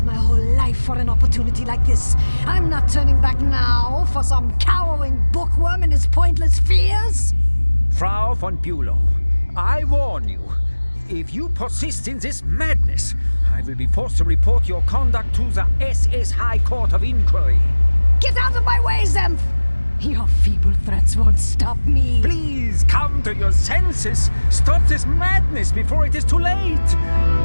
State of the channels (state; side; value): inverted; both; correlation -1.00